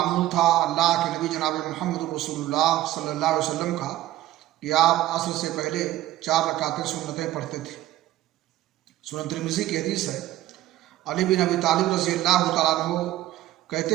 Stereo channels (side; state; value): left; quieter; 14.9 dB